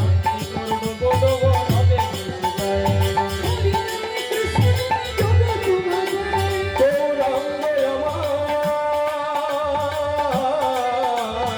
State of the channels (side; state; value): both; identical; correlation 1.00